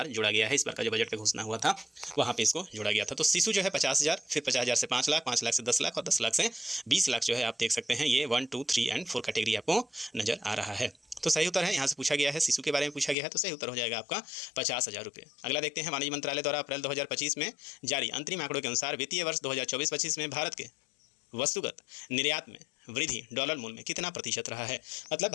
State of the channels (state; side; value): drops out; right; at 13.2 s